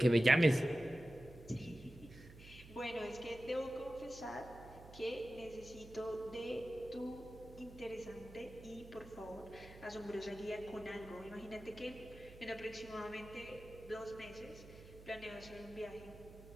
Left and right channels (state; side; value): noise; right; hum, 17 dB below the sound